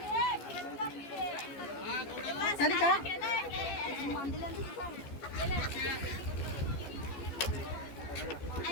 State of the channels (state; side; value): late; right; 14 ms